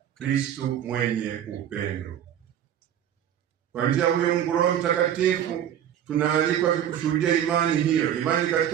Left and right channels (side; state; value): left; quieter; 10.2 dB